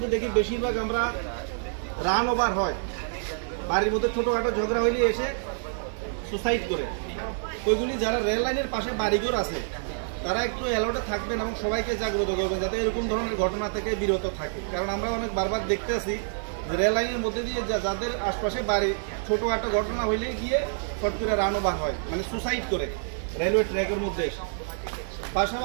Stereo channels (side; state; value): left; silent; 58 dB below the other